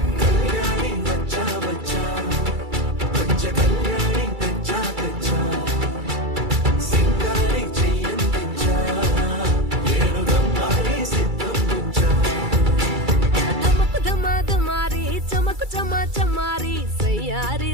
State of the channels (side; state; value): left; late; 2.3 ms